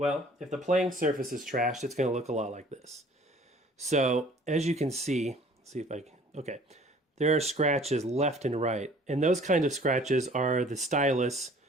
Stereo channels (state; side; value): normal; both; correlation 0.52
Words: if the playing surface is trashed, it's going to look a lot like this. So as you can see, see if I can, okay, there are scratches left and right, and those kind of scratches are the stylus,